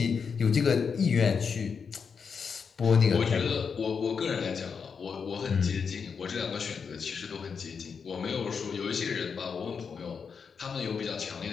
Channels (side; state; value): right; quieter; 6.0 dB